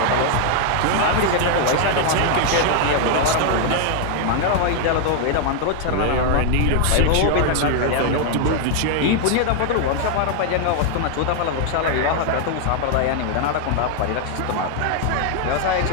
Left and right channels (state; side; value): different; both; correlation 0.00